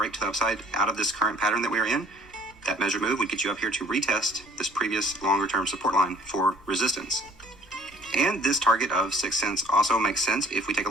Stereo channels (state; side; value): normal; both; correlation 0.56